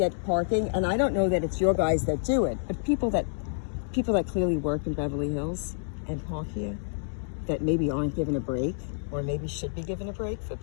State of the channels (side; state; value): right; silent; 59 dB below the other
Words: parking, and I don't know that it's your guys that do it, but people that clearly work in Beverly Hills and park here that maybe aren't given a break, or maybe should be given a break for